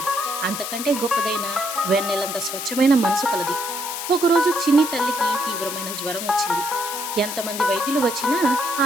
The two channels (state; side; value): noise; left; hiss, 6 dB below the sound